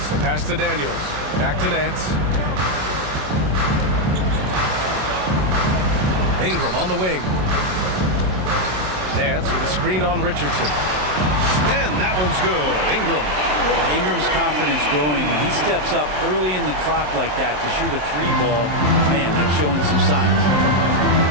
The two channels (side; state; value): left; late; 27 ms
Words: the pass to Daniels. Back to Nance. Ingram on the wing. Nance with a screen on Richardson. And that one's good. Ingram. Ingram's confidence growing. When he steps up early in the clock like that to shoot a 3-ball, man, that's showing some signs.